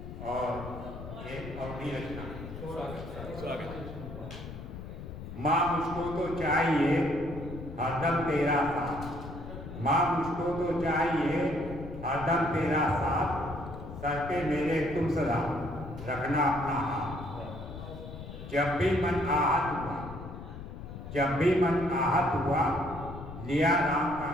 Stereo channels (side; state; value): left; noise; rumble, 11 dB below the sound